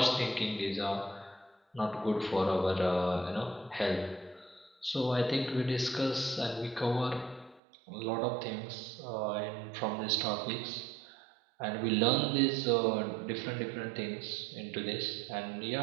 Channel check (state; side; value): drops out; left; at 7.6 s